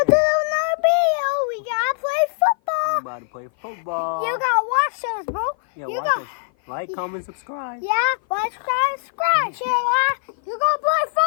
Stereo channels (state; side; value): silent; right; 56 dB below the other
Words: to another video. We gotta play football. We're about to play football. You gotta watch us, bro. Yeah, you watch us. Like, comment, subscribe. Yeah, like, subscribe, share, like. You gonna play